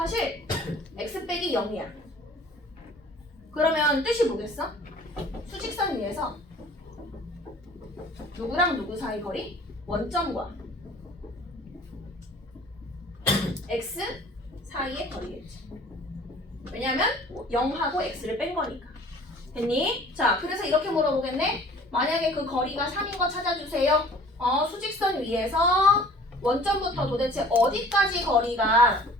x 빼기 0이야. 그러면 뜻이 뭐겠어? 수직선 위에서 누구랑 누구 사이 거리? 원점과 x 사이의 거리겠지. 왜냐면 0하고 x를 뺀 거니까. 됐니? 자, 그래서 이렇게 물어보겠네. 만약에 그 거리가 3인 거 찾아주세요. 수직선 위에서 원점부터 도대체 어디까지 거리가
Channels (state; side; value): normal; both; correlation 0.49